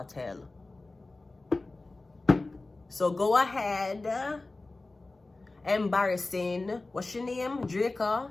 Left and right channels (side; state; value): right; quieter; 3.2 dB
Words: hell. So go ahead. Embarrassing. What's your name? Draco.